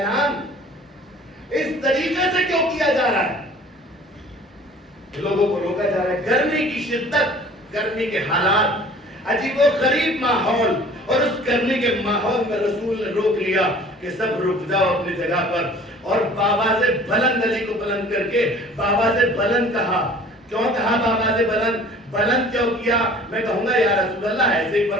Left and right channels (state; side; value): normal; both; correlation 0.48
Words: اس طریقے سے کیوں کیا جا رہا ہے؟ لوگوں کو روکا جا رہا ہے. گرمی کی شدت, گرمی کے حالات, عجیب و غریب ماحول, اور اس گرمی کے ماحول میں رسول نے روک لیا کہ سب رک جاؤ اپنی جگہ پر. اور بابا سے بلند, علی کو بلند کر کے بابا سے بلند کہا. کیوں کہا بابا سے بلند کیوں کیا؟ میں کہوں گا یا رسول اللہ ایسے ہی